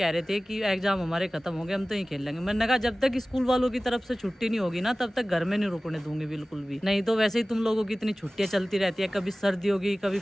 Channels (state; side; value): normal; both; correlation 0.97